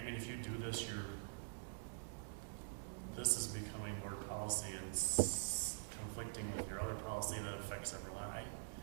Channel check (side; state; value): left; silent; digital silence